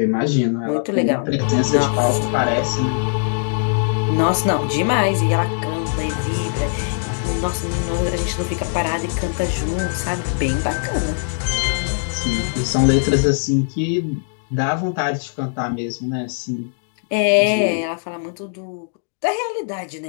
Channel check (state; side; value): silent; right; digital silence